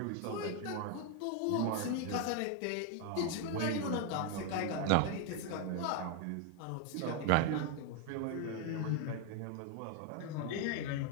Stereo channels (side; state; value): both; different; correlation 0.01